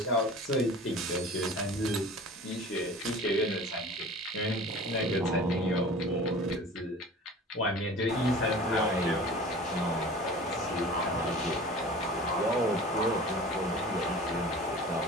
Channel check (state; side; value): normal; both; correlation 0.40